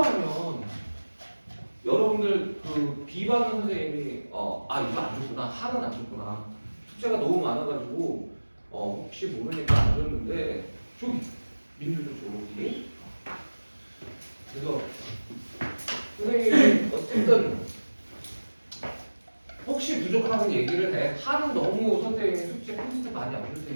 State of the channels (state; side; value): inverted; both; correlation -1.00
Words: 여러분들 그 비반 선생님이 이거 안 줬구나, 하는 안 줬구나, 숙제가 너무 많아가지고 혹시 모르니까 안 줬는데 저기 민주도 저기. 그래서 선생님이 어쨌든 혹시 부족하면 얘기를 해. 하는 너무 선생님이 숙제 콘센트 많이 안 줄